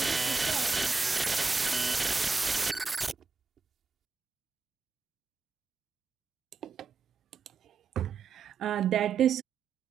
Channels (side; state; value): left; quieter; 4.9 dB